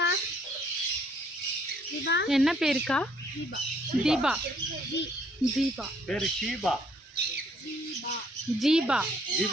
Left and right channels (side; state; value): both; normal; correlation 0.65